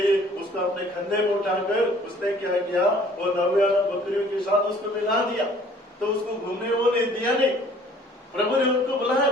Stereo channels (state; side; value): normal; both; correlation 0.55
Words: उसको अपने कंधे में उठाकर उसने क्या किया, वो 99 बकरियों के साथ उसको मिला दिया। तो उसको घूमने वो नहीं दिया नहीं, प्रभु ने उनको बुलाया